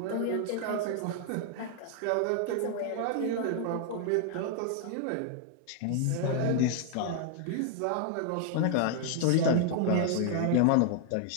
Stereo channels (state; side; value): different; both; correlation 0.00